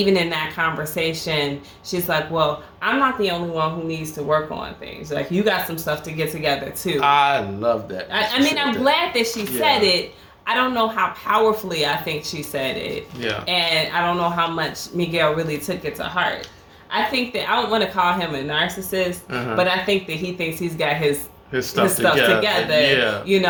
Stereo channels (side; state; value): both; identical; correlation 1.00